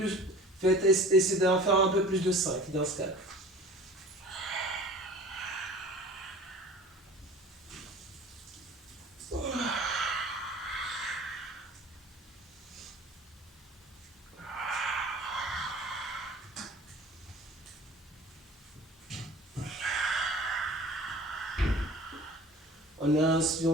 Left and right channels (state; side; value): normal; both; correlation 0.44